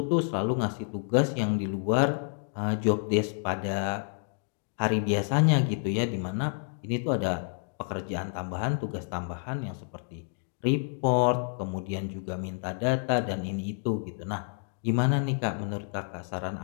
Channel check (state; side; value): silent; right; digital silence